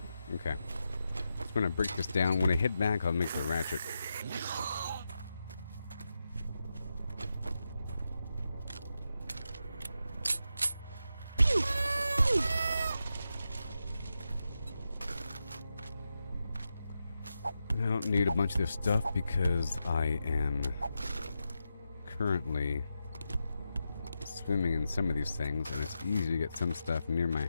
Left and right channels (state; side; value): inverted; both; correlation -0.88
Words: Okay. Just gonna break this down. When I head back, I'll make the ratchet. I don't need a bunch of this stuff because I am currently swimming in some of these things, and it's easy to get some stuff near my